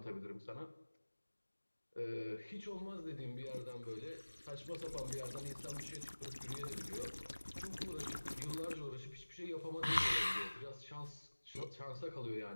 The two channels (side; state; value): both; inverted; correlation -1.00